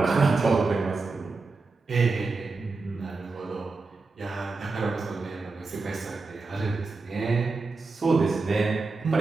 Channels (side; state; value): left; quieter; 3.9 dB